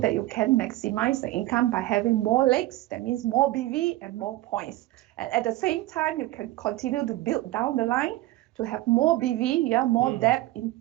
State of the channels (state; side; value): quieter; left; 17.0 dB